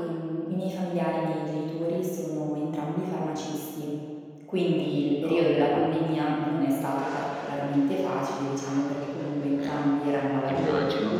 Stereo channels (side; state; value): both; identical; correlation 1.00